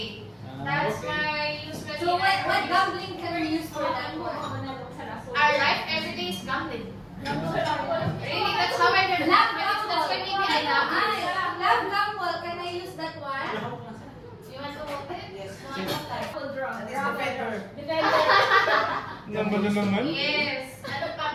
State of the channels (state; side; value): identical; both; correlation 1.00